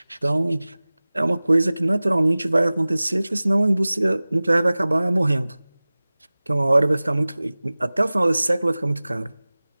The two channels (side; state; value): both; inverted; correlation -0.99